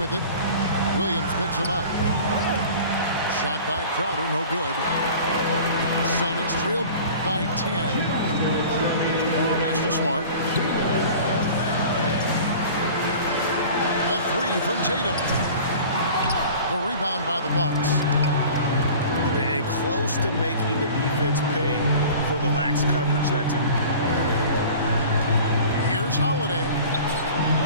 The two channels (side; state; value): both; inverted; correlation -0.42